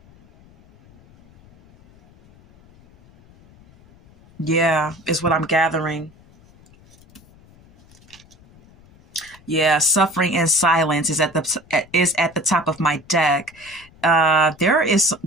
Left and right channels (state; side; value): noise; left; rumble, 27 dB below the sound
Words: Yeah, is what I'm gathering. Yeah, suffering in silence is at the top of my deck. There is